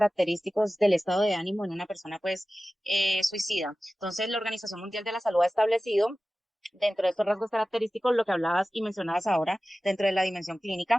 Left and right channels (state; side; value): normal; both; correlation 0.96